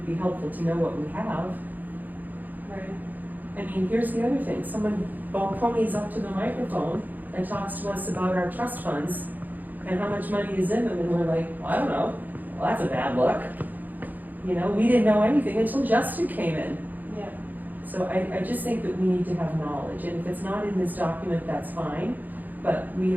be helpful to know what we have. Right. I mean, here's the other thing, someone ponies up to the microphone and talks to us about our trust funds and how much money is in them, and we're like, well, I don't know, well, that's a bad look. You know, we didn't know anything until Justin came in. Yeah. So I just think that we need to have knowledge, and if it's not in this document, that's fine, but we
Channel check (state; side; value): late; left; 0.084 ms